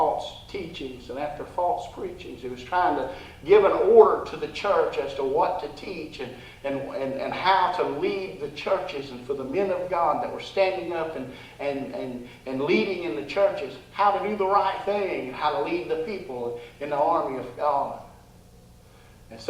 teachings and after false preachings. He was trying to give an order to the church as to what to teach and how to lead the churches, and for the men of God that were standing up and leading in the churches, how to do the right thing and how to lead the people in the army of God. And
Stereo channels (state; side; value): identical; both; correlation 1.00